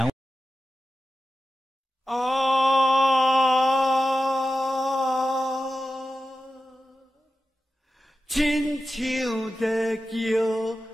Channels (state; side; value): normal; both; correlation 0.92